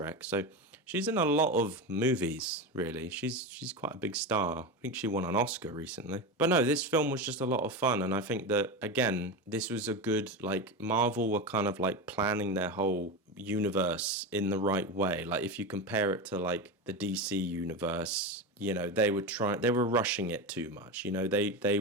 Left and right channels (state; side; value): normal; both; correlation 0.20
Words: so she's in a lot of movies, really. She's quite a big star. I think she won an Oscar recently. But no, this film was just a lot of fun, and I think that again, this was a good, like, Marvel were kind of like planning their whole universe in the right way. Like if you compare it to like the DC universe, they were rushing it too much. They